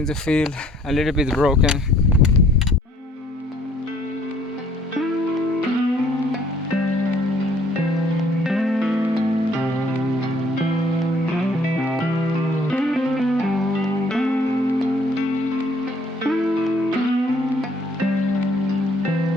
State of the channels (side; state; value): both; normal; correlation 0.61